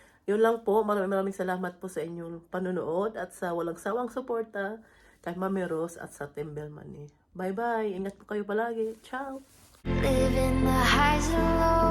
yun lang po. Maraming salamat po sa inyong panonood at sa walang sawang suporta kay Mami Rose at sa Tembel Money. Bye-bye. Ingat po kayo palagi. Ciao! Living the highs and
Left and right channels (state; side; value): identical; both; correlation 1.00